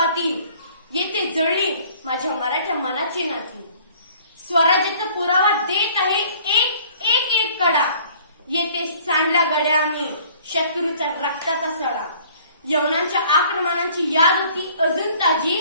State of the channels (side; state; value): both; inverted; correlation -0.54